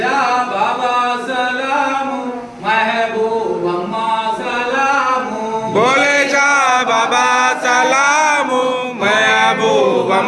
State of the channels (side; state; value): both; identical; correlation 1.00